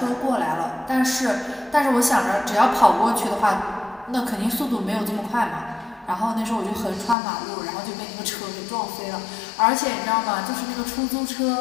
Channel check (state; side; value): drops out; right; at 7.2 s